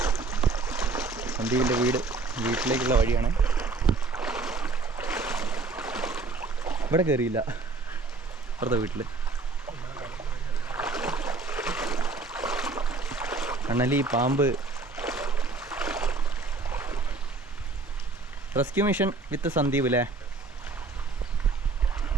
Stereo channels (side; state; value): left; quieter; 3.7 dB